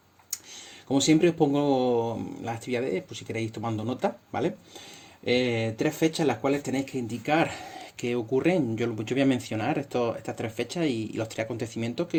Como siempre os pongo las actividades, por si queréis tomando nota, ¿vale? Tres fechas en las cuales tenéis que indicar qué ocurren. Yo voy a mencionar estas tres fechas y los tres acontecimientos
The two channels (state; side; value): identical; both; correlation 1.00